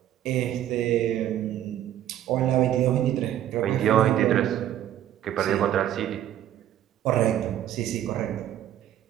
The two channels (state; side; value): quieter; left; 11.7 dB